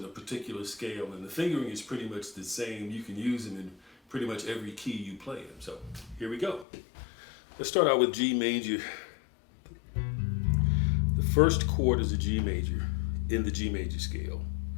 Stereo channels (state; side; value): drops out; right; at 6.7 s